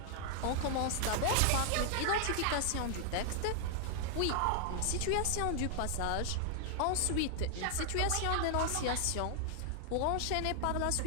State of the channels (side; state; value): both; different; correlation 0.00